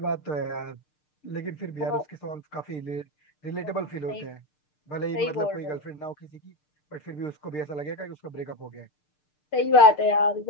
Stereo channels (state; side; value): late; right; 6.6 ms